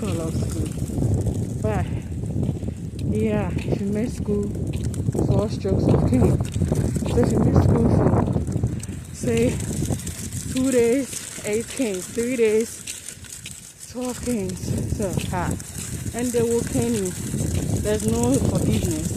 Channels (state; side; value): identical; both; correlation 1.00